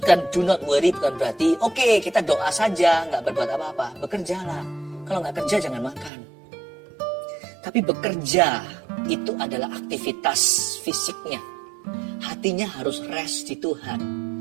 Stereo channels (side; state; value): left; drops out; at 6.1 s